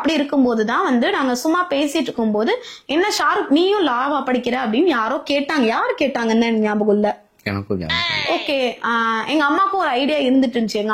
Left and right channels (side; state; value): both; identical; correlation 1.00